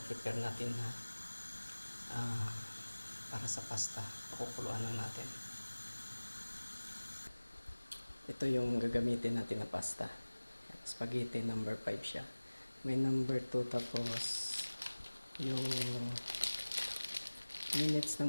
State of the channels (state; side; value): inverted; both; correlation -1.00